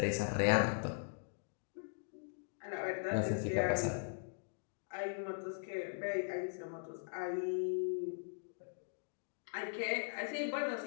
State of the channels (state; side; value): silent; right; digital silence